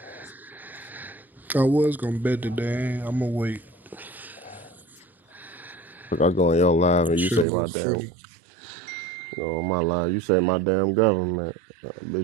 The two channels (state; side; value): drops out; left; at 7.5 s